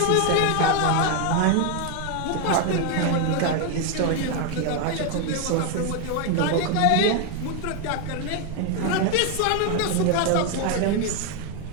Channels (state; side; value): different; both; correlation 0.01